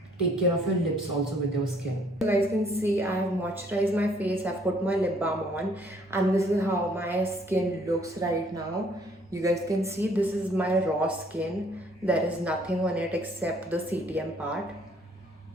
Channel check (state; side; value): normal; both; correlation 0.62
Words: take care of your lips also with your skin. You guys can see I have moisturized my face, I've put my lip balm on, and this is how my skin looks right now. You guys can see this is my raw skin. There is nothing on it except the CTM part.